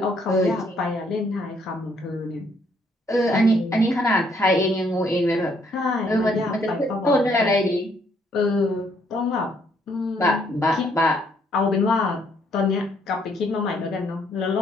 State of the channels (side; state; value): both; normal; correlation 0.69